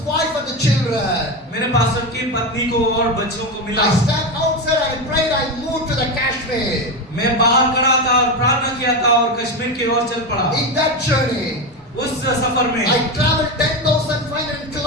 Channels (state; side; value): normal; both; correlation 0.16